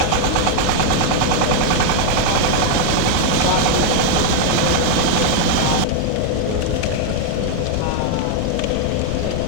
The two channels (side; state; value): both; different; correlation 0.00